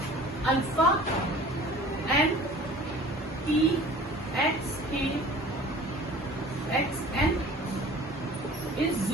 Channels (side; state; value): both; normal; correlation 0.45